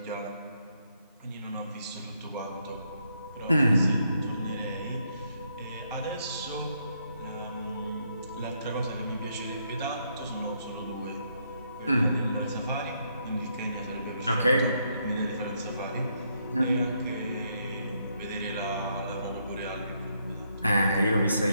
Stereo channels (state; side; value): inverted; both; correlation -0.75